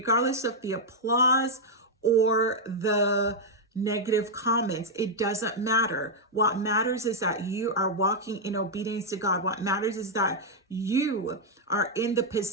of the applause or the negative comments. It doesn't matter. What matters is that you are walking in obedience to God. What matters is that you are in the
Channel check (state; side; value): normal; both; correlation -0.02